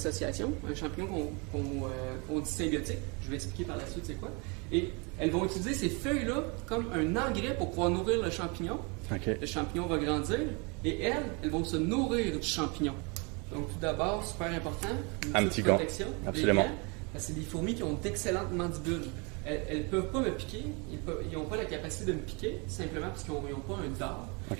un champignon qu'on dit symbiotique. Je vais expliquer par la suite c'est quoi. Et elles vont utiliser ces feuilles-là comme un engrais pour pouvoir nourrir le champignon. Le champignon va grandir et elles vont se nourrir du champignon. Donc tout d'abord, super important, un petit gant, absolument. Parce que c'est des fourmis qui ont d'excellentes mandibules. Elles ne peuvent pas me piquer, ils n'ont pas la capacité de me piquer, simplement parce qu'ils n'ont pas un dard.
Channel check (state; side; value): quieter; left; 31.2 dB